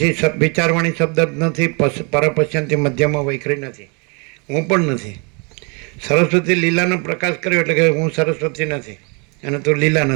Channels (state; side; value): quieter; left; 33.0 dB